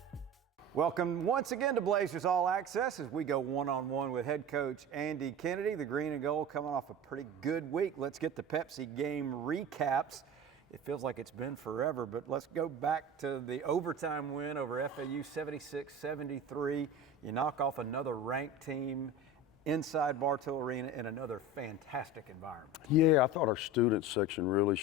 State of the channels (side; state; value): both; normal; correlation 0.32